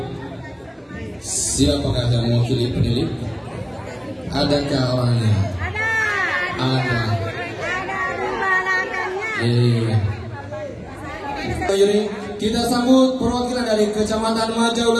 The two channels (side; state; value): both; identical; correlation 1.00